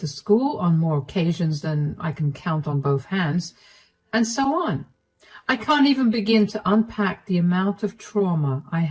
school on more occasions than I can count on both hands, and so on. I can't even begin to unpack the amount of trauma I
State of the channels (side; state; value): both; identical; correlation 1.00